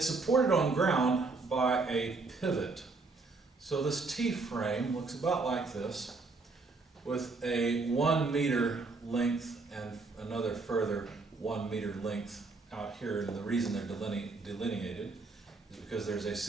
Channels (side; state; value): left; quieter; 3.8 dB